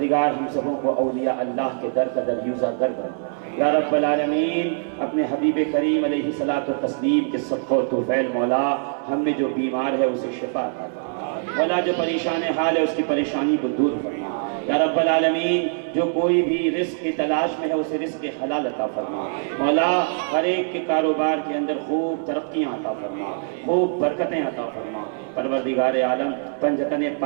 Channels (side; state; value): left; silent; 63 dB below the other